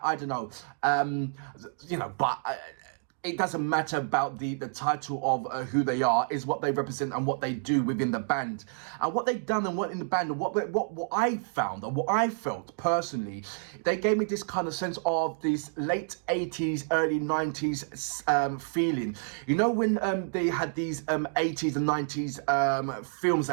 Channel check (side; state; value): left; silent; digital silence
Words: don't know. But it doesn't matter about the title of who they are. Is what they represent and what they do within the band, and what they've done and what in the band, and what I found and what I felt personally. They gave me this kind of sense of this late 80s, early 90s feeling. You know, when they had these 80s and 90s films